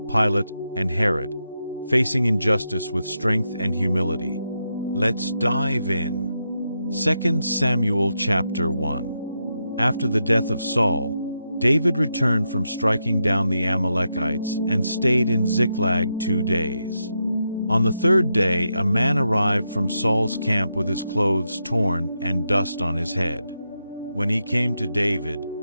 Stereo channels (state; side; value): inverted; both; correlation -0.85